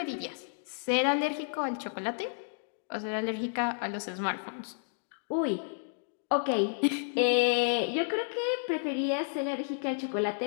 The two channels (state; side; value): silent; right; digital silence